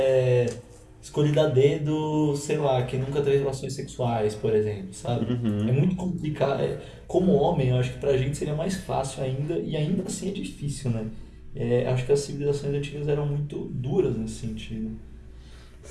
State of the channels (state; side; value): identical; both; correlation 1.00